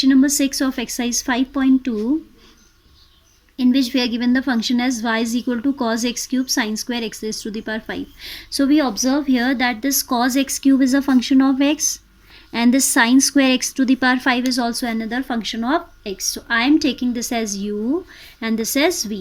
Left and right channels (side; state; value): both; identical; correlation 1.00